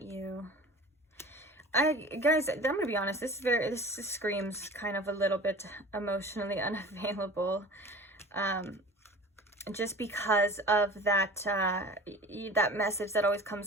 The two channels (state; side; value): normal; both; correlation 0.40